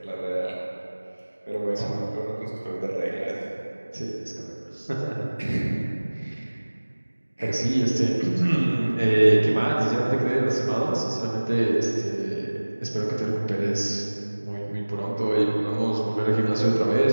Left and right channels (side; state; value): both; inverted; correlation -1.00